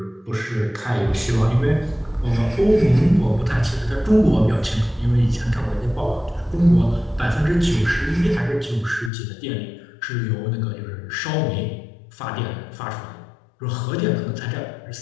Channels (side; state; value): right; drops out; at 9.1 s